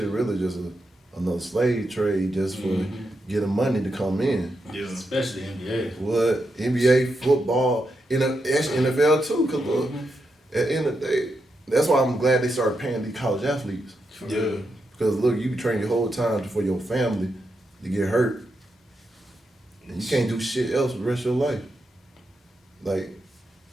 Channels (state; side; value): normal; both; correlation 0.84